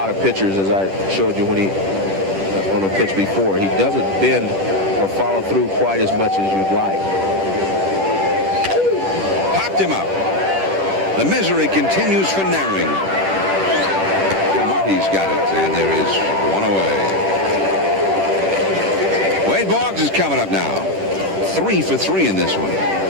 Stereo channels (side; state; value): left; late; 10 ms